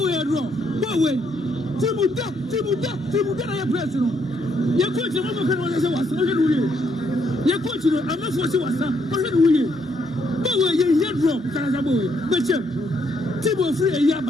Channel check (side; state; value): both; normal; correlation 0.73